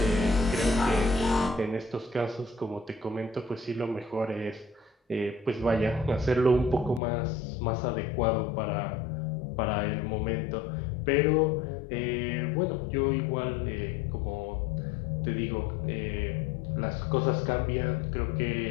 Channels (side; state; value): right; drops out; at 7.0 s